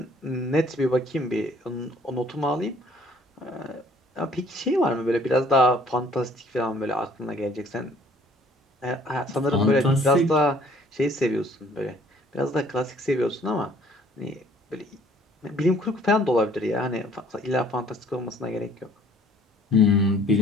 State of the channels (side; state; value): both; normal; correlation 0.57